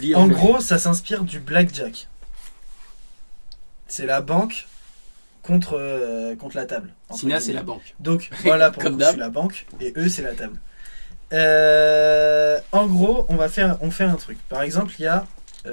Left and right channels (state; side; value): inverted; both; correlation -1.00